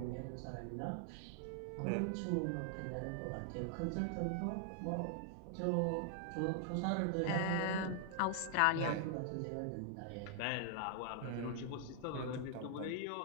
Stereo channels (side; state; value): both; different; correlation 0.00